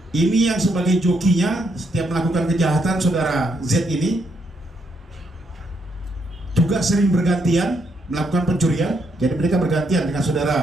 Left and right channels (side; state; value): both; normal; correlation 0.76